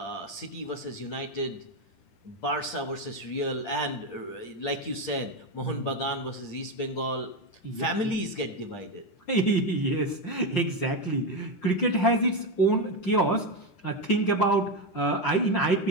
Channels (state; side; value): late; right; 10 ms